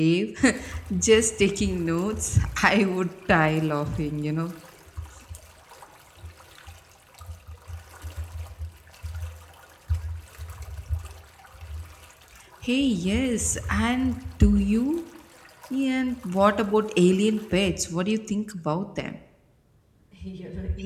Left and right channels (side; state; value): both; identical; correlation 1.00